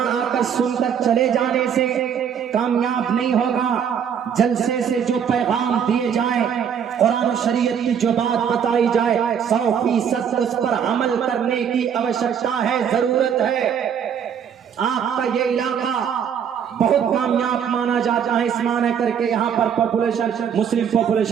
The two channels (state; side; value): quieter; left; 8.0 dB